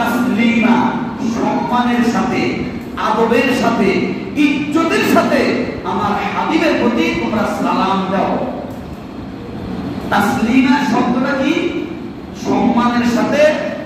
সম্মানের সাথে, আদবের সাথে, ইজ্জতের সাথে আমার হাবিবের প্রতি তোমরা সালাম দাও। তাসলিমা শব্দটা কি? সম্মানের সাথে,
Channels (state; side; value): identical; both; correlation 1.00